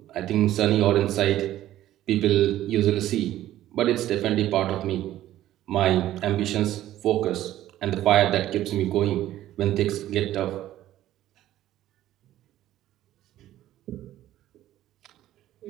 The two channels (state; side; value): quieter; left; 13.5 dB